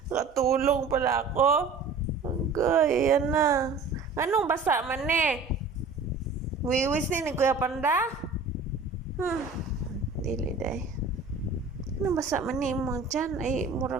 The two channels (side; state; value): left; quieter; 4.1 dB